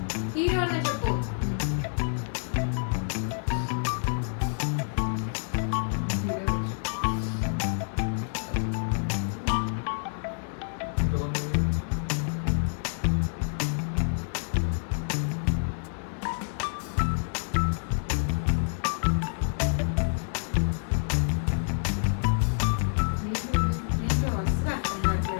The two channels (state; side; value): silent; right; digital silence